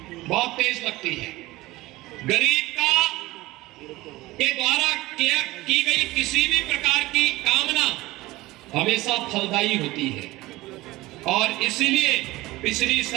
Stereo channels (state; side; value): quieter; left; 19.1 dB